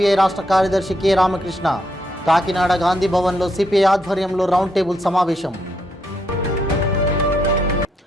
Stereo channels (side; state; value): both; normal; correlation 0.77